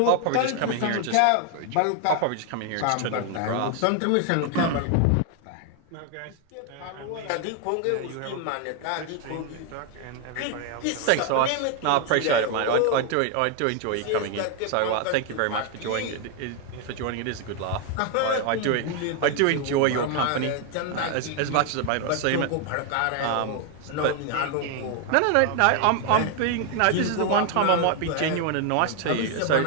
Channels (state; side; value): different; both; correlation 0.01